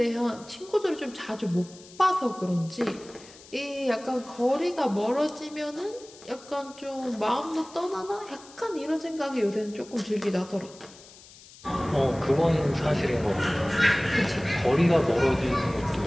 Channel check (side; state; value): left; noise; hiss, 21 dB below the sound